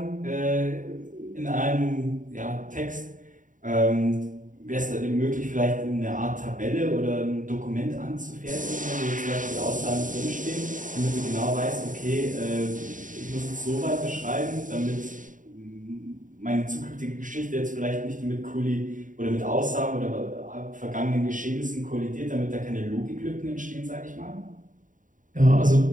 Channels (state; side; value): late; left; 0.38 ms